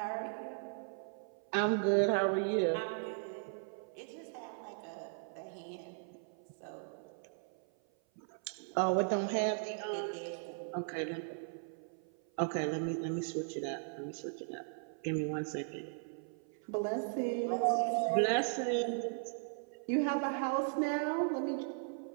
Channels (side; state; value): left; silent; 53 dB below the other